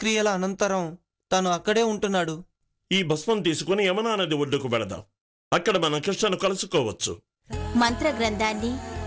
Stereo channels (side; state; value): both; identical; correlation 1.00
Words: అనంతరం తను అక్కడే ఉంటున్నాడు. ఈ భస్మం తీసుకుని యమునా నది ఒడ్డుకు వెళదాం. అక్కడ మనం కృష్ణను కలుసుకోవచ్చు. మంత్రగ్రంథాన్ని,